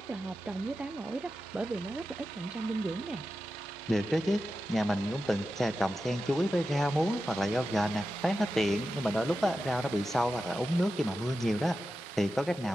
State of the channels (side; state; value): both; normal; correlation 0.91